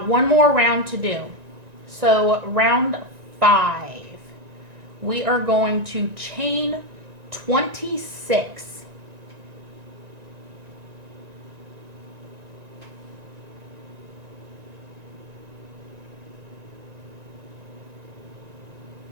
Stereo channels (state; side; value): late; left; 1.9 ms